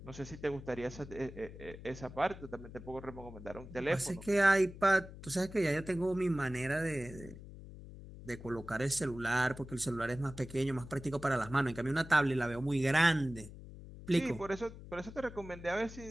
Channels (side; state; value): left; noise; hum, 14 dB below the sound